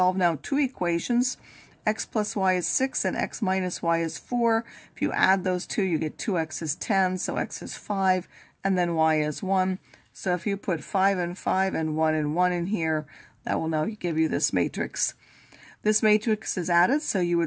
now 2 equations. X plus y is 6 and x minus y is 4. If you add those two, you get 2x is 10, so x is 5, and then y is 1. So if you put 5 and 5 and 1 and 1 in here, that will now give you this matrix. This matrix is added, so you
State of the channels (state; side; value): identical; both; correlation 1.00